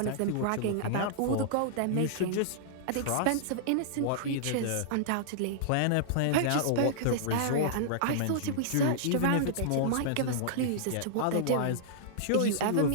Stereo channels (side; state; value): both; different; correlation -0.02